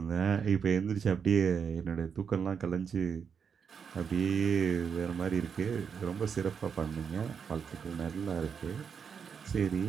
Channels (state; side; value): quieter; left; 6.7 dB